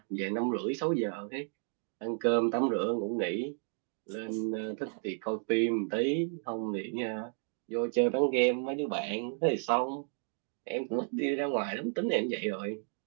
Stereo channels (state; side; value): silent; left; 56 dB below the other